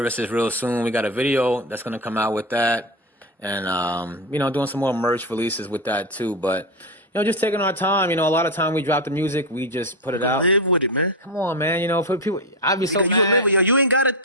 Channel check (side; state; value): both; normal; correlation 0.12